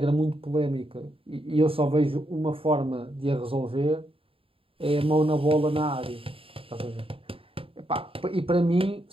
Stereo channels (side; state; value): left; late; 0.27 ms